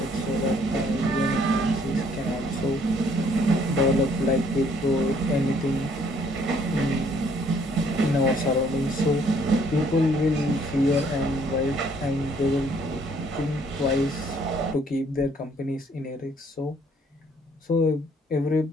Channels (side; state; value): both; normal; correlation 0.64